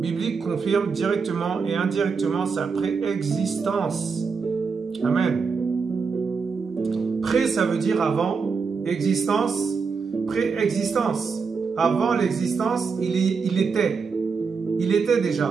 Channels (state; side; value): quieter; left; 5.2 dB